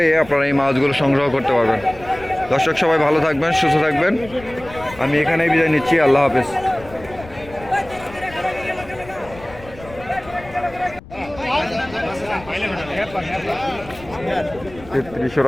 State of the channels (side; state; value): left; noise; rumble, 18 dB below the sound